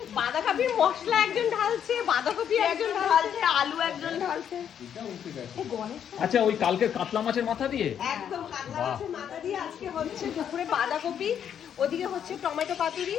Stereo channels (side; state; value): right; quieter; 8.9 dB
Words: বাঁধাকপির মশলা একজন ঢালছে, বাঁধাকপি একজন ঢালছে, আলু একজন ঢালছে। আচ্ছা ওই কালকের কাতলা মাছের মাথা দিয়ে? একদম কাতলা মাছের মাথা দিয়ে আজকে হচ্ছে দুপুরে বাঁধাকপি, ওদিকে হচ্ছে টমেটো পাতুরি।